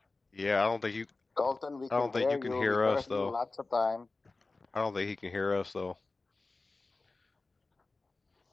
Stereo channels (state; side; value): quieter; right; 3.5 dB